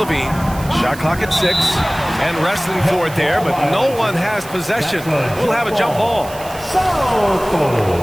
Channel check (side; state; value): right; noise; hiss, 17 dB below the sound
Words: Shot clock at 6. And wrestling for it there, but no one has possession. We'll have a jump ball.